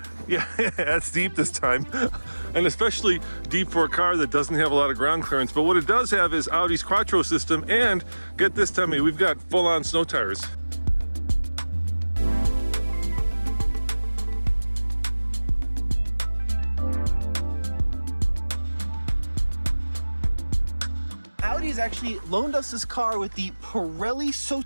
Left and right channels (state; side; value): inverted; both; correlation -1.00